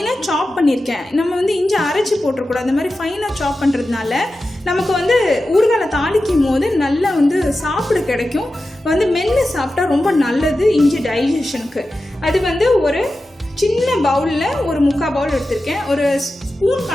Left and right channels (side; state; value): both; normal; correlation 0.93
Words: சாப் பண்ணியிருக்கேன். நம்ம இஞ்சி அரைச்சி போட்டுறக்கூடாது. அந்த மாதிரி ஃபைனாக சாப் பண்ணுறதுனால நமக்கு ஊறுகாய் தாளிக்கும் போது நல்லா சாப்பிட கிடைக்கும். மென்று சாப்பிட்டா ரொம்ப நல்லது இஞ்சி டைஜஷனுக்கு. அது ஒரு சின்ன பவுலில் ஒரு 3/4 பவுல் எடுத்திருக்கேன். ஒரு ஸ்பூன்